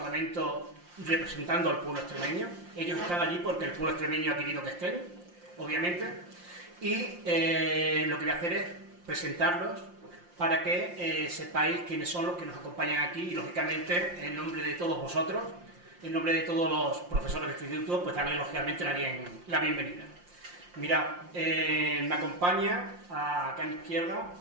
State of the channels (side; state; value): left; late; 5.7 ms